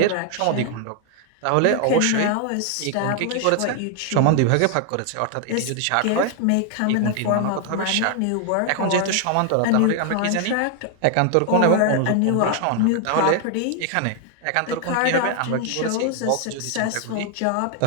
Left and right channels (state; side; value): different; both; correlation 0.00